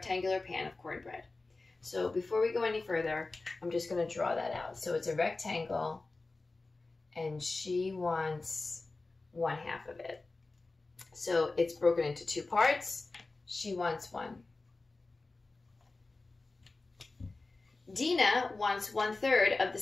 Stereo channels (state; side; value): quieter; right; 3.4 dB